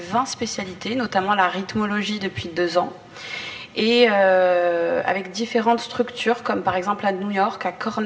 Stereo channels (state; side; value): identical; both; correlation 1.00